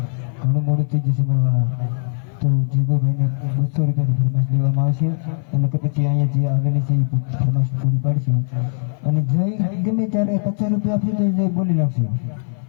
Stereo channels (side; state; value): right; silent; 57 dB below the other